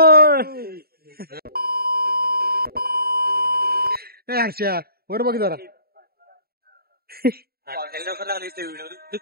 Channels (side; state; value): left; late; 0.45 ms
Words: आशा वर बघ जरा.